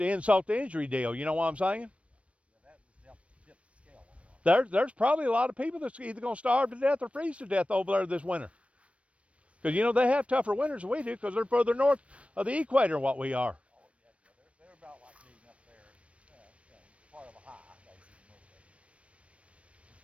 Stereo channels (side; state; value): left; late; 0.062 ms